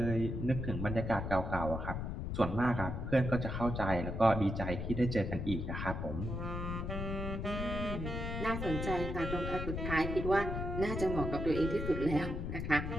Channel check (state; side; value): noise; left; rumble, 4 dB below the sound